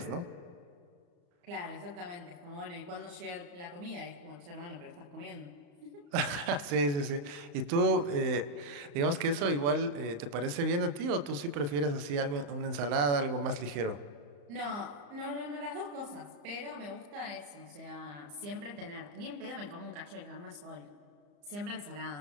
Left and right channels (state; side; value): late; left; 35 ms